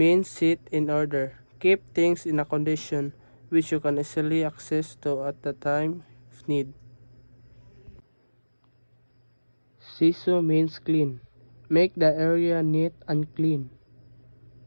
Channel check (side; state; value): both; inverted; correlation -1.00